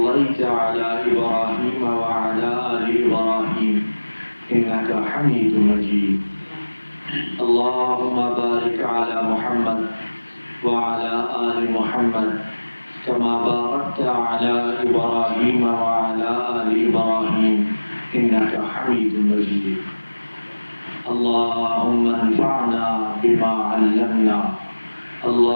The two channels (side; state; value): both; inverted; correlation -1.00